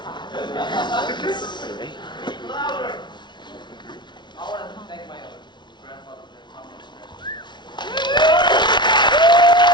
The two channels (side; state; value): right; late; 0.22 ms